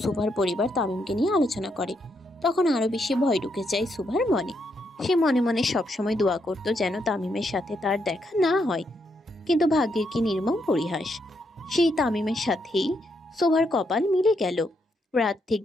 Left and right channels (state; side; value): normal; both; correlation 0.78